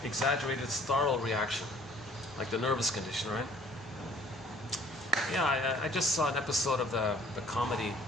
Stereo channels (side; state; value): both; normal; correlation 0.55